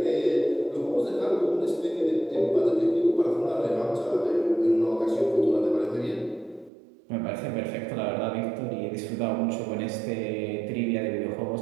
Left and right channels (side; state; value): left; drops out; at 6.7 s